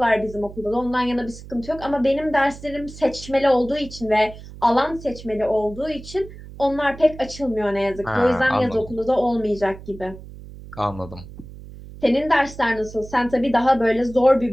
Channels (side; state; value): right; noise; hum, 16 dB below the sound